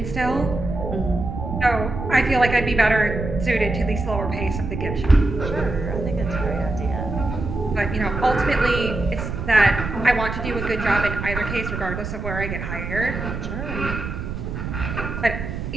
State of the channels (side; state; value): right; noise; rumble, 5 dB below the sound